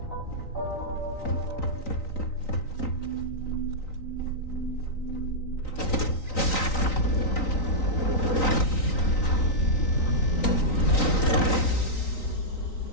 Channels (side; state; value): right; late; 3.9 ms